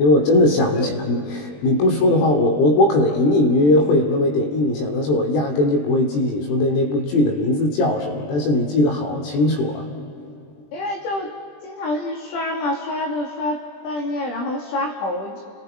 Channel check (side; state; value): right; late; 20 ms